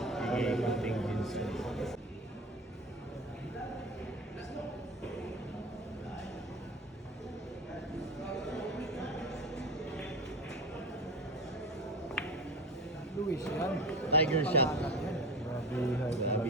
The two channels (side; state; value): both; normal; correlation 0.29